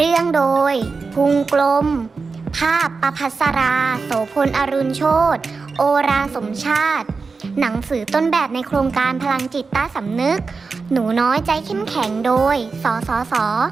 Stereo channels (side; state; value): left; quieter; 4.5 dB